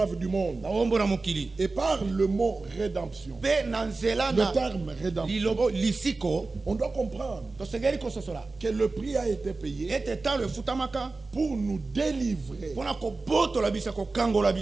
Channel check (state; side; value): quieter; left; 3.6 dB